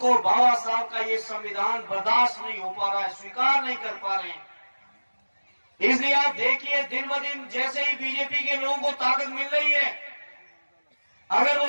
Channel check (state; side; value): inverted; both; correlation -1.00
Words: बाबा साहब का ये संविधान बर्दाश्त नहीं हो पा रहा है, स्वीकार नहीं कर पा रहे हैं। इसलिए आप देखिए, दिन ब दिन जैसे ही बीजेपी के लोगों को ताकत मिल रही है, अगर वो